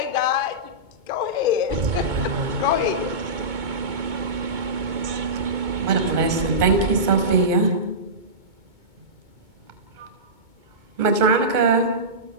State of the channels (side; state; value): left; late; 2.2 ms